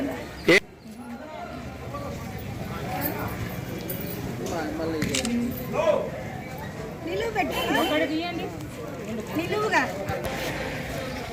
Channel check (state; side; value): identical; both; correlation 1.00